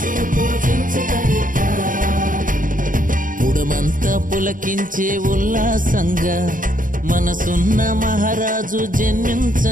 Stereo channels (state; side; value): late; left; 0.39 ms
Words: పుడమంతా పులకించే ఉల్లాసంగా మనసున్న మహారాజు